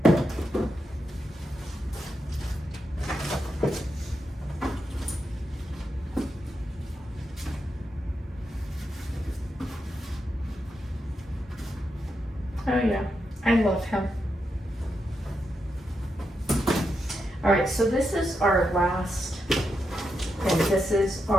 Oh yeah, I love him. All right, so this is our last, and this is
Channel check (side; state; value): both; normal; correlation 0.85